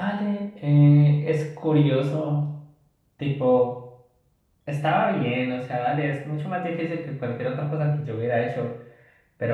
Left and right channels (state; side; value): identical; both; correlation 1.00